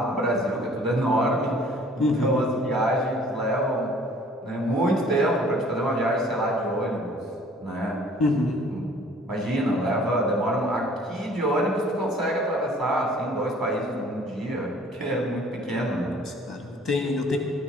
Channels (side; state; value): both; normal; correlation 0.53